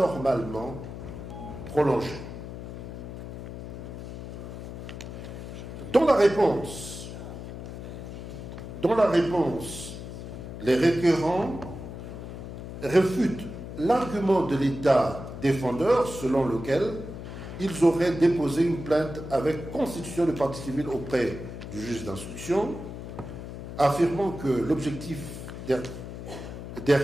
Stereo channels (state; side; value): noise; left; hum, 9 dB below the sound